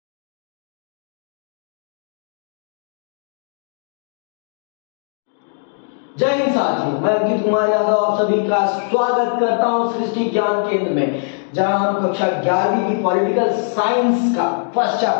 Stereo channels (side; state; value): right; silent; digital silence